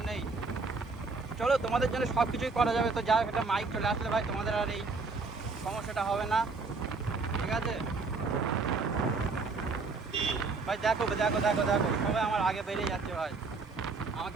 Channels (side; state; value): left; quieter; 4.1 dB